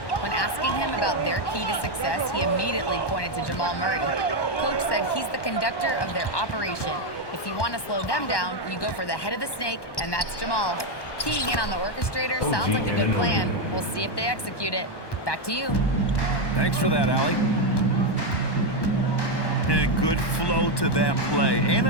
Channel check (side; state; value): right; late; 1.1 ms